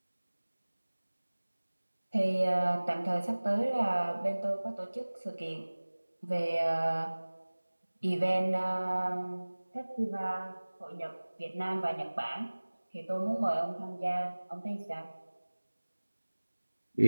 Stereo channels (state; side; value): inverted; both; correlation -1.00